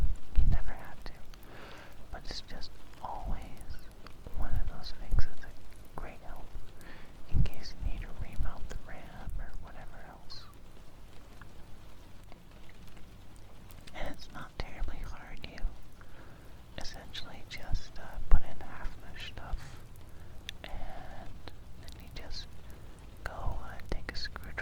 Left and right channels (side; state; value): both; identical; correlation 1.00